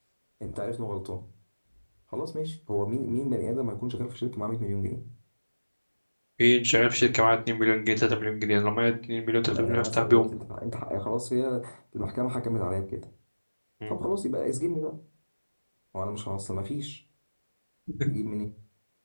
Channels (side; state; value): both; inverted; correlation -1.00